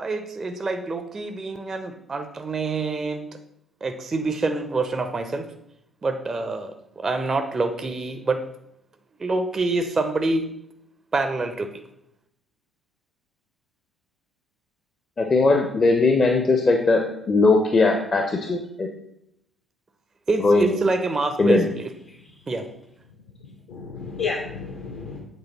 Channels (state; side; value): normal; both; correlation 0.77